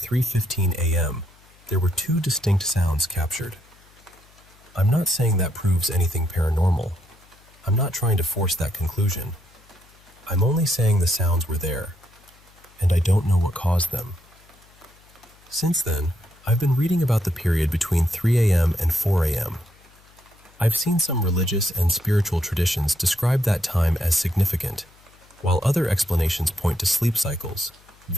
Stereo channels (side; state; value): left; noise; hum, 28 dB below the sound